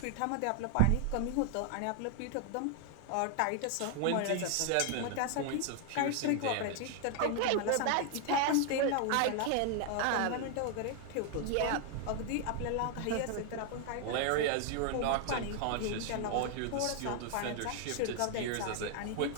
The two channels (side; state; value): both; different; correlation 0.00